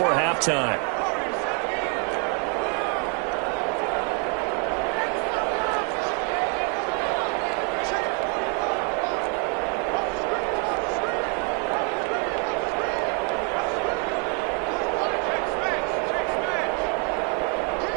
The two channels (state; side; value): quieter; left; 35.8 dB